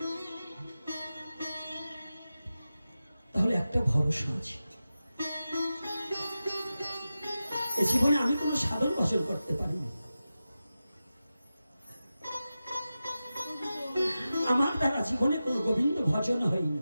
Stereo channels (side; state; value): both; inverted; correlation -0.93